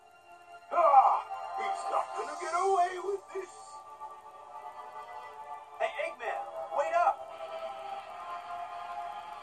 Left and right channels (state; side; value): identical; both; correlation 1.00